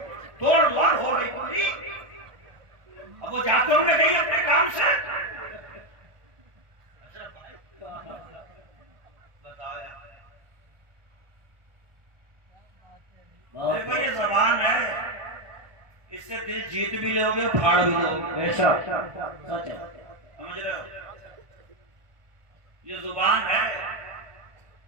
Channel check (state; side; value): late; left; 1.4 ms